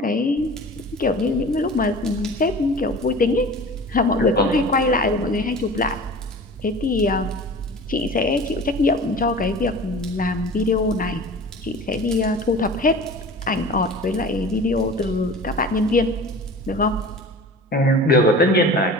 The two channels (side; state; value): both; normal; correlation 0.39